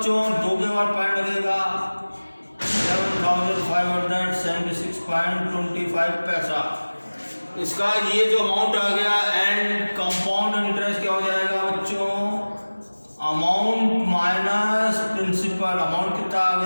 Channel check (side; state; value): both; inverted; correlation -1.00